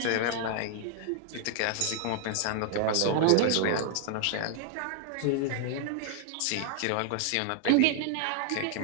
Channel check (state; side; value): different; both; correlation 0.00